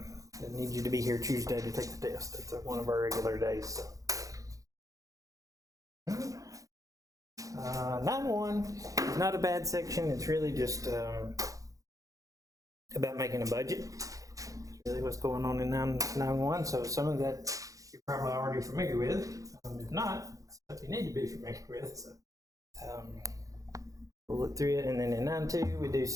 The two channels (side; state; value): left; late; 0.16 ms